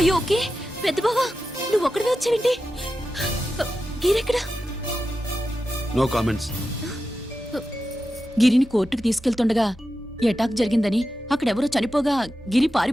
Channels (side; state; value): both; normal; correlation 0.91